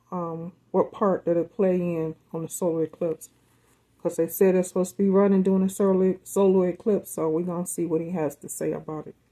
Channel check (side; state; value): both; identical; correlation 1.00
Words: what part that it play in on the solar eclipse. Because they said it's supposed to be running during the solar eclipse, so we're gonna see what he has to say about it.